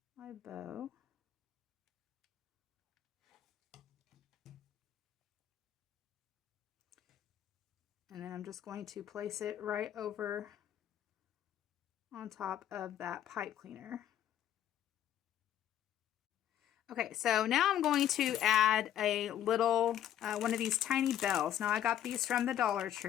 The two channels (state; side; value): quieter; right; 11.0 dB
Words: my bow. And then I'm just going to place it right over on top of that pipe cleaner. Okay, so now I'm going to add a little, one of these tiny bells. Now I got these from the Dollar